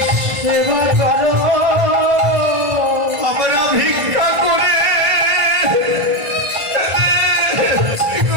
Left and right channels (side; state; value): left; late; 1.5 ms